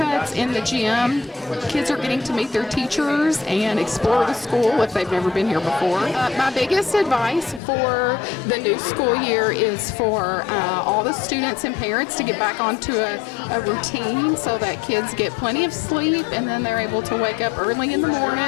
in the gym. Kids are getting to meet their teachers and explore the school if they've never been here before. My biggest advice for the new school year is for all the students and parents to get back onto a routine so that kids get plenty of sleep, and then they're able to wake up early in the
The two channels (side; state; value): right; drops out; at 7.6 s